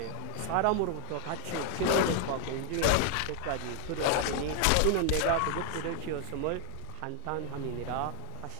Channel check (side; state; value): both; different; correlation 0.00